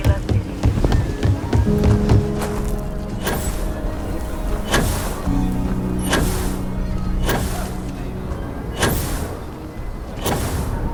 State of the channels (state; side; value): identical; both; correlation 1.00